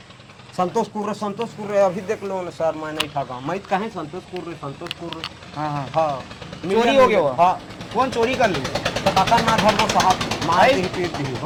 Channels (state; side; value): identical; both; correlation 1.00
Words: संतोष कुर्रे अभी देख लो ना सर, मैं नहीं ठगा, मैं कहें संतोष कुर्रे। हाँ हाँ हाँ, चोरी हो गया वो? हाँ, कौन चोरी कर लिया? तो काका ना घर को साहब मार दी पीट दी